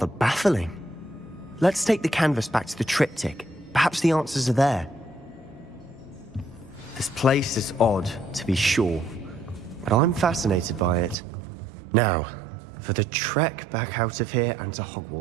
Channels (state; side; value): drops out; left; at 11.2 s